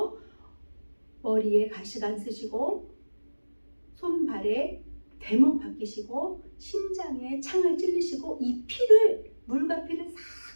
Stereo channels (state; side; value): inverted; both; correlation -1.00